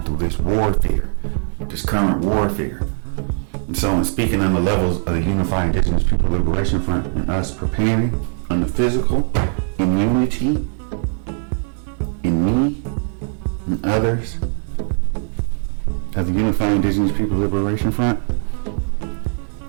through this warfare, this current warfare. And so in speaking on the levels of the Unified Indigenous People Liberation Front and us preparing on the physical, in unity, in me and others, of the Unified Indigenous People Liberation Front,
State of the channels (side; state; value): left; silent; 66 dB below the other